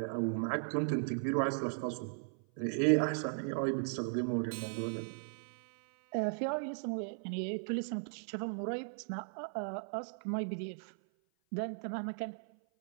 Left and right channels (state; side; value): silent; left; 53 dB below the other